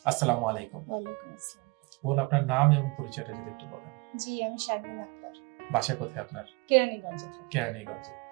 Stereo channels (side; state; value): left; quieter; 27.2 dB